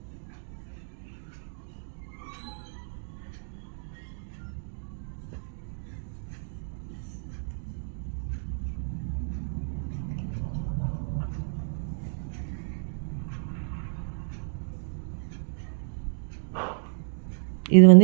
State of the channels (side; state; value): left; silent; digital silence